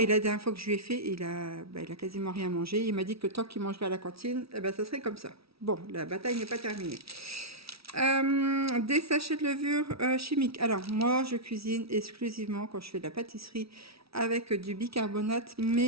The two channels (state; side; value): late; left; 0.76 ms